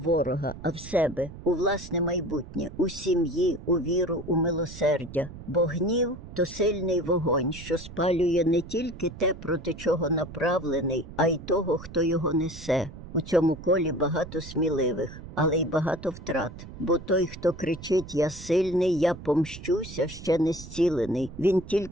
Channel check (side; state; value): right; noise; rumble, 14 dB below the sound